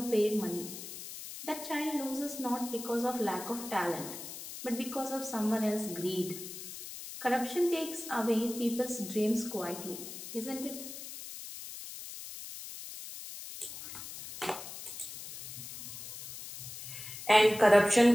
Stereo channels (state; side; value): noise; left; hiss, 10 dB below the sound